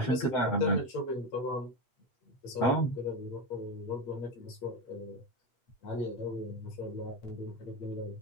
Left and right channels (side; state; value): right; late; 8.5 ms